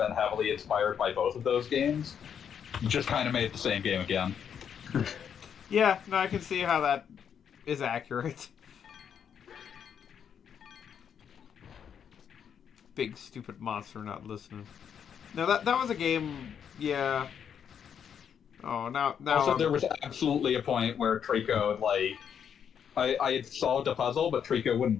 heavily inspired by both of those games, you just kind of made the same game again. Yeah, no, I can see how that is accurate. Big stupid monster not listening. No, that was a game. Yeah. Oh, now. Also, there was absolutely a point where Trico I had solved a puzzle, but Trico wouldn't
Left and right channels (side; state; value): right; quieter; 8.0 dB